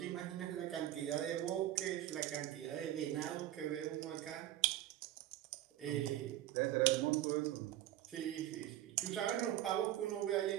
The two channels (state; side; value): quieter; left; 13.5 dB